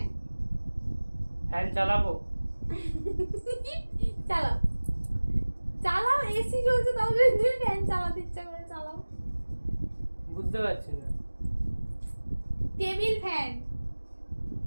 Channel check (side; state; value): both; inverted; correlation -1.00